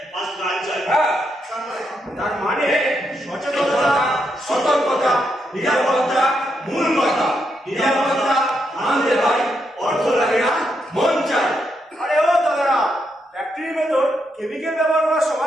ফার্স্ট গান চাই। হ্যাঁ, তার মানে সচেতনতা, সতর্কতা, নিরাপত্তা মূল কথা। নিরাপত্তা আনতে হয়, অর্থ লাগে না, মন চাই। আরে ও দাদারা, ফ্যাক্টরির ভেতর কেমিক্যাল ব্যবহার করার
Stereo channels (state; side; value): normal; both; correlation 0.81